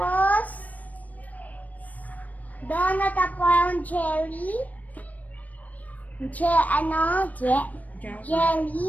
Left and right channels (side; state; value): right; late; 0.074 ms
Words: donut at parang jelly. Jelly.